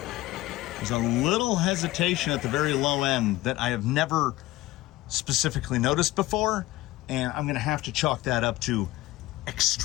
There's a little hesitation at the very low end that I have never specifically noticed before, and I'm gonna have to chalk that up to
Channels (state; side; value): quieter; right; 17.7 dB